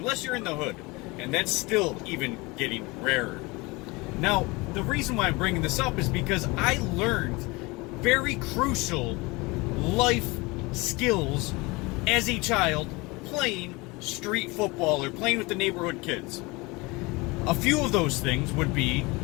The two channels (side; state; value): right; quieter; 24.5 dB